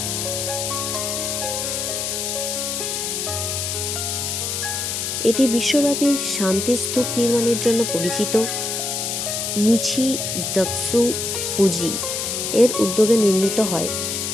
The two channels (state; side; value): noise; left; hiss, 2 dB below the sound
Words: এটি বিশ্বব্যাপী শান্তি স্তূপ নির্মাণের জন্য পরিচিত। নিচি দাৎসু ফুজি এর উদ্যোগে নির্মিত হয়।